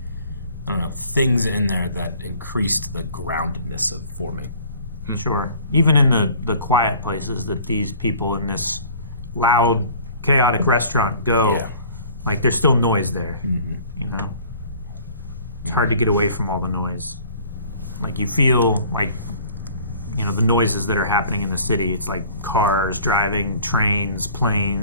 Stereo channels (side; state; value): both; inverted; correlation -0.50